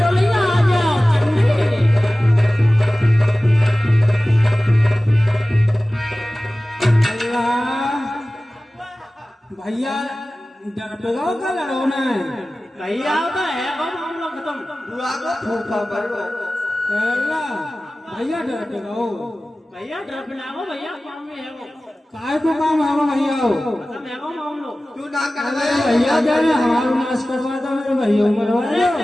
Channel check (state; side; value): normal; both; correlation 0.97